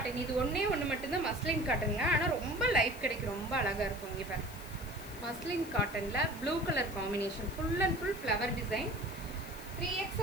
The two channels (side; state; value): left; noise; hiss, 17 dB below the sound